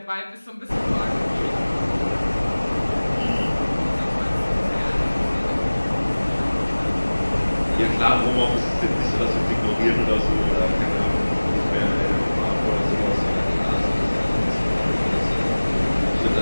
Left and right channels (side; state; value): both; inverted; correlation -1.00